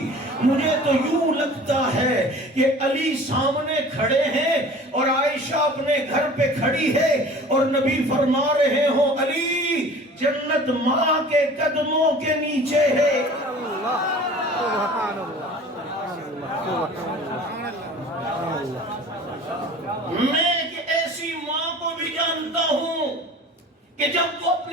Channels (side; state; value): both; normal; correlation 0.44